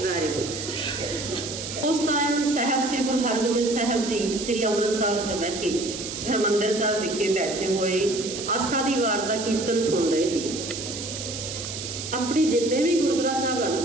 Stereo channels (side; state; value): right; noise; hiss, 7 dB below the sound